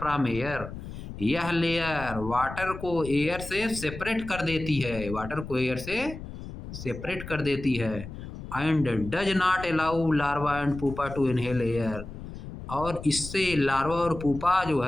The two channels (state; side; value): noise; left; rumble, 11 dB below the sound